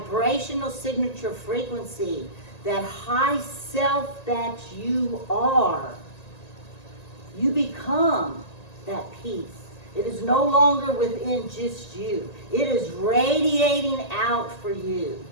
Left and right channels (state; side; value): late; right; 1.9 ms